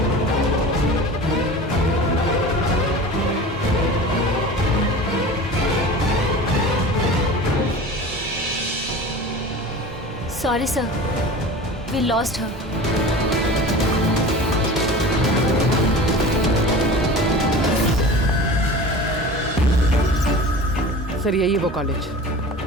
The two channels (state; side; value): normal; both; correlation 0.36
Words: Sorry, sir. We lost her. Sir यही है वो कॉलेज